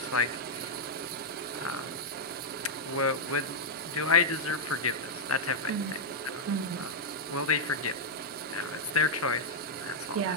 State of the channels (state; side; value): normal; both; correlation -0.04